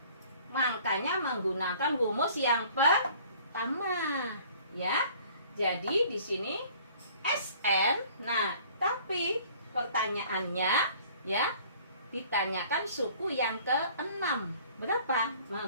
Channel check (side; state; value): both; inverted; correlation -0.53